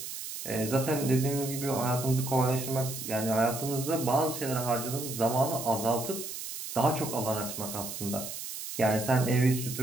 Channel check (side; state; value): right; noise; hiss, 8 dB below the sound